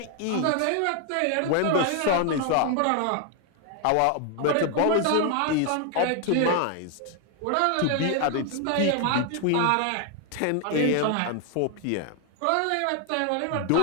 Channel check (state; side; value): different; both; correlation 0.00